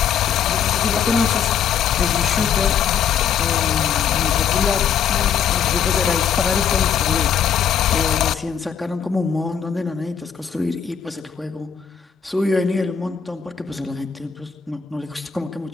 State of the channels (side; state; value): right; quieter; 7.8 dB